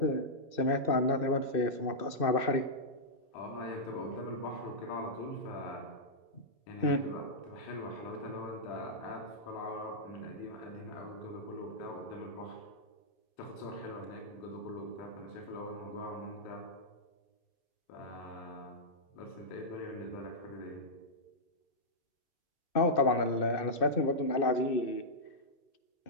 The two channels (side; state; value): right; late; 2.6 ms